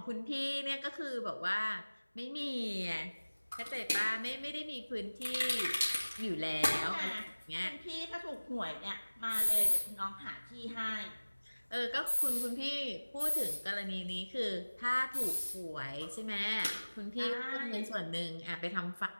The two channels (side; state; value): both; inverted; correlation -1.00